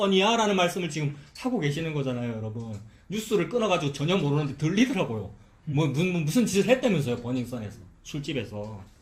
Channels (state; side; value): identical; both; correlation 1.00